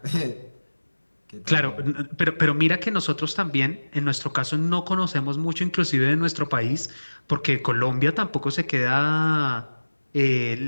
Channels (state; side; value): inverted; both; correlation -1.00